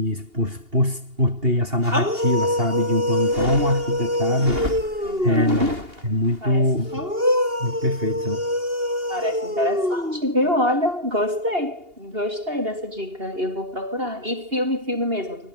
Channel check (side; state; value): left; late; 2.8 ms